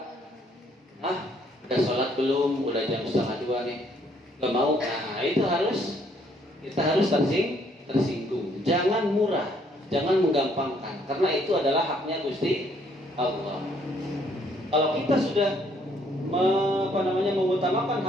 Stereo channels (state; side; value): normal; both; correlation 0.66